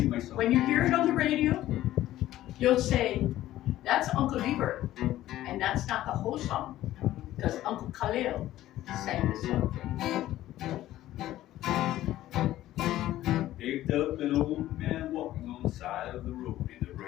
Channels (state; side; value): quieter; right; 14.3 dB